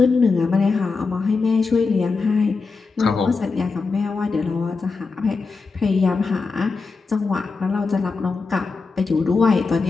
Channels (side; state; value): right; quieter; 4.4 dB